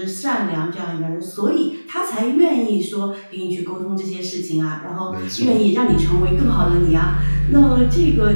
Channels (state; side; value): inverted; both; correlation -1.00